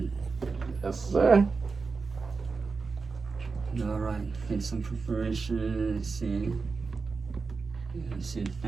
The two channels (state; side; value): quieter; left; 4.5 dB